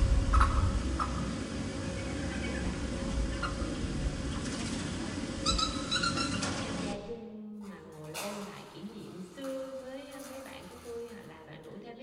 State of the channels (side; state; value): both; identical; correlation 1.00